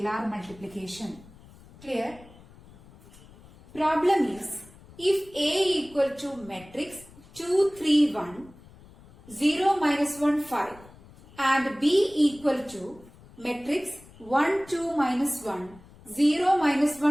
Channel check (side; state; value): left; noise; rumble, 23 dB below the sound